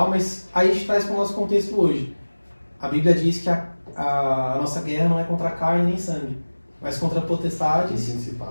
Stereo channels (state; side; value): inverted; both; correlation -1.00